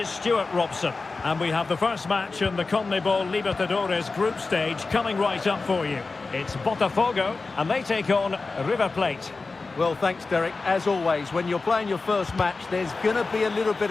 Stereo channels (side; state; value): right; quieter; 3.9 dB